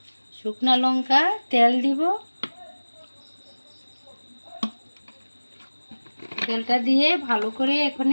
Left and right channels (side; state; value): both; inverted; correlation -1.00